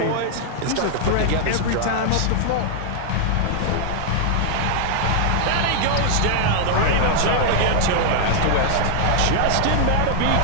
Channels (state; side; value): different; both; correlation -0.01